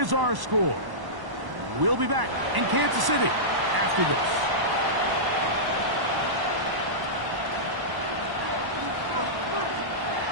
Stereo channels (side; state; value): left; late; 1.0 ms